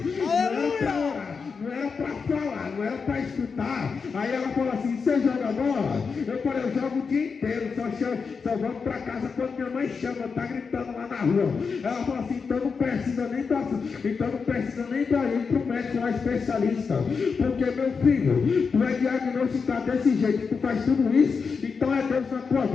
Não era para orar, não era para falar, não era para escutar. Aí ela falou assim: você joga bola? Eu falei: eu jogo o dia inteiro, só vamos para casa quando minha mãe chama, tá gritando lá na rua. Ela falou assim: então não precisa nem para ir para o médico lá especialista, porque meu filho, tu é diagnosticado desse jeito, tu faz tudo isso, então é Deus na tua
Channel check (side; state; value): right; quieter; 5.3 dB